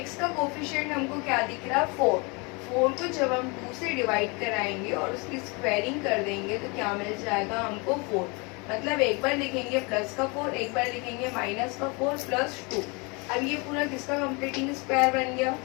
x का कोफिशिएंट हमको क्या दिख रहा है? 4। 4 को जब हम 2 से डिवाइड कराएंगे और उसकी स्क्वायरिंग कर देंगे तो क्या मिल जाएगा हमको? 4। मतलब एक बार लिखेंगे प्लस का 4, एक बार लिखेंगे माइनस का 4 + 2। अब ये पूरा किसका कंप्लीटिंग स्क्वायर बन गया?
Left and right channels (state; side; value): quieter; right; 29.6 dB